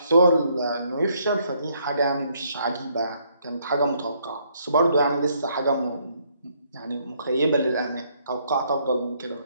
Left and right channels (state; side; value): inverted; both; correlation -0.69